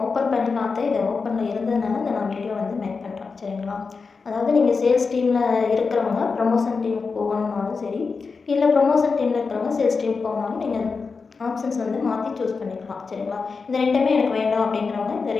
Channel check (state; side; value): quieter; right; 4.7 dB